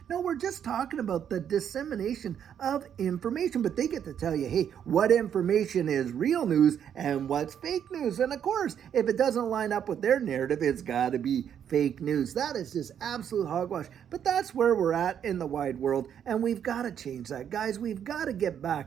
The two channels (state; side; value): quieter; left; 8.9 dB